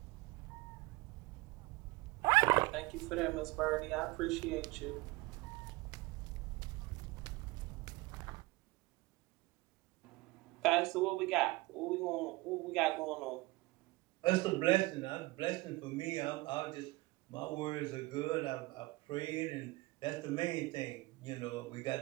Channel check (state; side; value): quieter; left; 22.0 dB